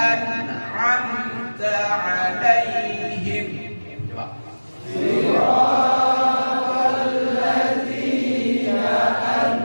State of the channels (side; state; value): both; inverted; correlation -1.00